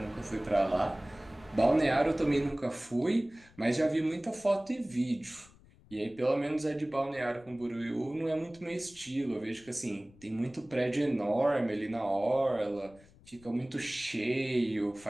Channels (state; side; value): noise; left; rumble, 25 dB below the sound